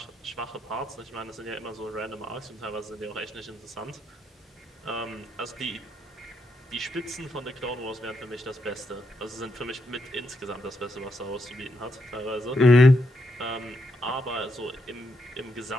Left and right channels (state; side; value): normal; both; correlation 0.80